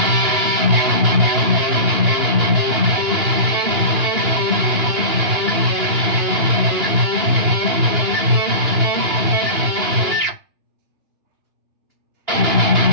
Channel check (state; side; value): late; left; 2.9 ms